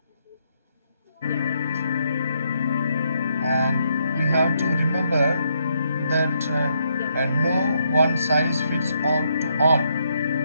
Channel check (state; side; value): inverted; both; correlation -0.76